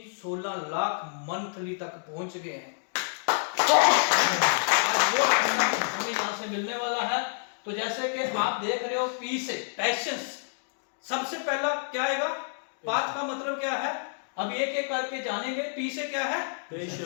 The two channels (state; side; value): silent; right; digital silence